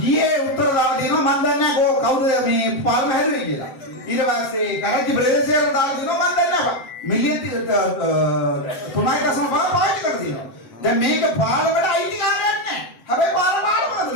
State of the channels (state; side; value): late; right; 7.6 ms